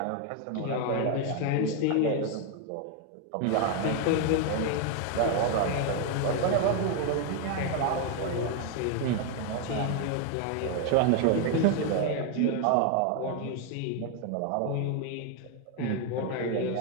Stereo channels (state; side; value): different; both; correlation 0.01